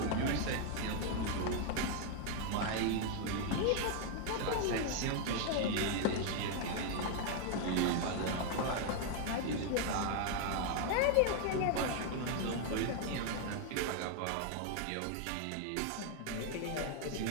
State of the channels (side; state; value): both; different; correlation 0.00